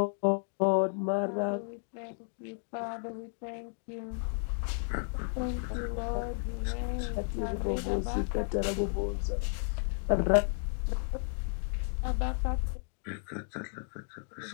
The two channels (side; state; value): right; silent; 56 dB below the other